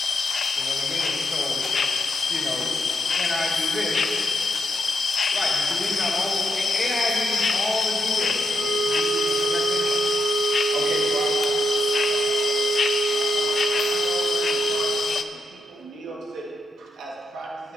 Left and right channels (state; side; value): normal; both; correlation 0.82